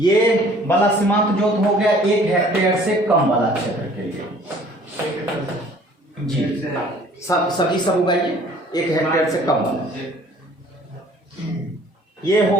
वाला सीमांत जोत हो गया 1 हेक्टेयर से कम वाला क्षेत्र के लिए जी। सब उगाइए 1 हेक्टेयर से कम वाला। ये हो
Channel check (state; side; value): normal; both; correlation 0.54